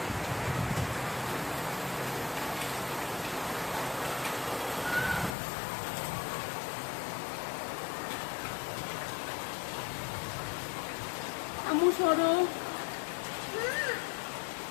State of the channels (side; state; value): right; drops out; at 5.3 s